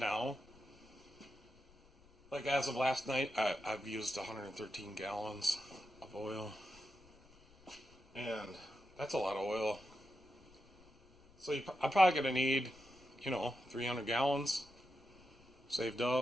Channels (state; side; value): noise; left; rumble, 27 dB below the sound